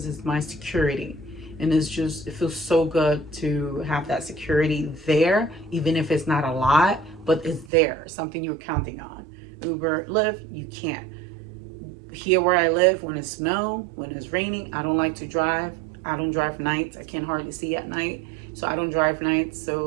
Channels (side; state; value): left; drops out; at 7.7 s